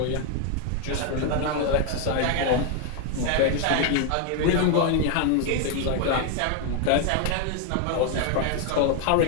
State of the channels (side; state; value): both; different; correlation 0.01